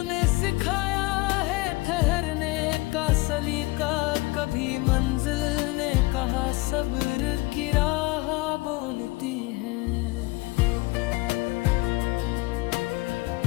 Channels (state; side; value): quieter; right; 22.5 dB